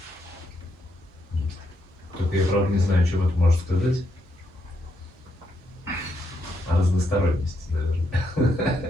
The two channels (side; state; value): both; normal; correlation 0.78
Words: Только я, правда, не знаю, что это может сказать. О разносторонности, наверное.